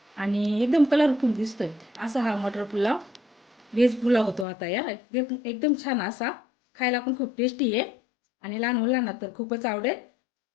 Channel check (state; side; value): drops out; right; at 4.5 s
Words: आणि एकदम कलरफुल दिसतोय. असा हा मटर पुलाव व्हेज पुलाव होतो आता यार. एकदम छान असा, खायला पण खूप टेस्टी आहे आणि लहान मुलांना तर खूपच आवडेल.